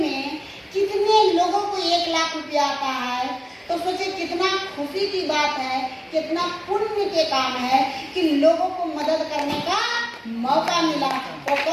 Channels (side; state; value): both; identical; correlation 1.00